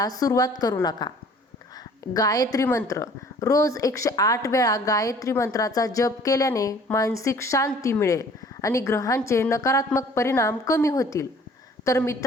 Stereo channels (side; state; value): both; normal; correlation 0.53